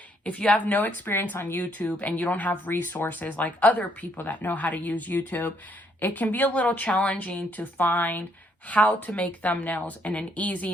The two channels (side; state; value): both; normal; correlation 0.70